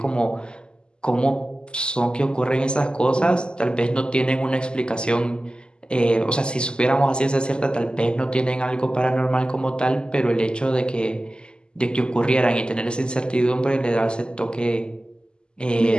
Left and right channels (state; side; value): late; right; 0.048 ms